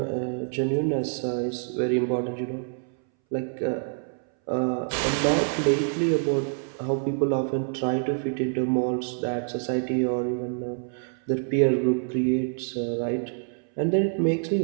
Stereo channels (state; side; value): silent; left; 61 dB below the other